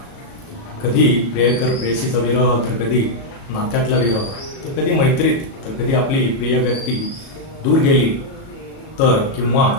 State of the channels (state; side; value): late; right; 37 ms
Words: कधी प्रियकर प्रेयसीचा विरह, तर कधी नात्यातला विरह, तर कधी मैत्रीत, तर कधी आपली प्रिय व्यक्ती दूर गेली तर, किंवा